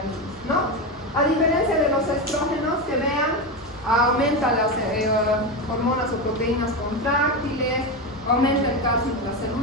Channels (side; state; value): both; normal; correlation 0.15